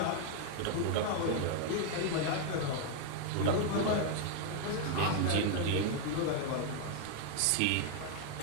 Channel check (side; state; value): both; different; correlation 0.00